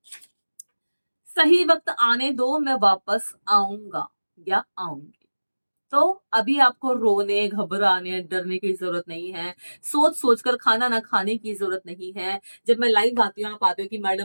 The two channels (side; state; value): both; inverted; correlation -1.00